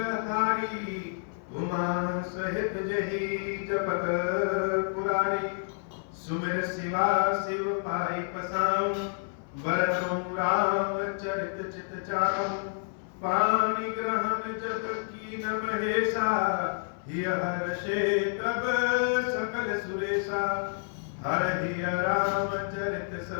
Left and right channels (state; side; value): silent; right; 56 dB below the other